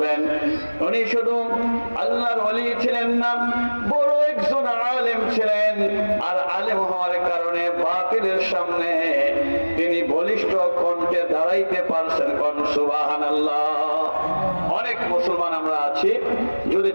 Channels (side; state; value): both; inverted; correlation -1.00